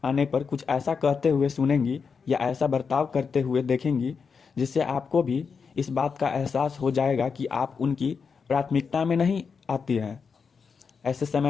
आने पर कुछ ऐसा कहते हुए सुनेंगी या ऐसा बर्ताव करते हुए देखेंगी जिससे आपको भी इस बात का एहसास हो जाएगा कि आप उनकी प्राथमिकता में नहीं आती हैं। ऐसे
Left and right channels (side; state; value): right; quieter; 5.7 dB